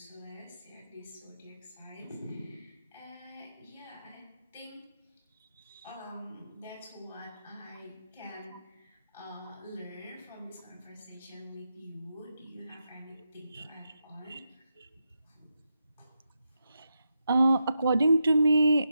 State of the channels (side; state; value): both; inverted; correlation -0.86